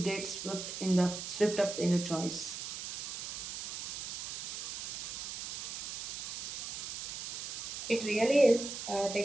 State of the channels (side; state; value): right; noise; hiss, 5 dB below the sound